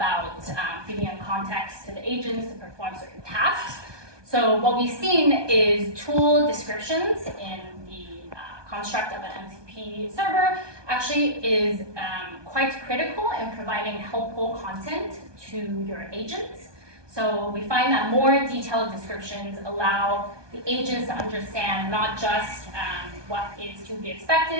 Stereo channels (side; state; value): left; late; 1.2 ms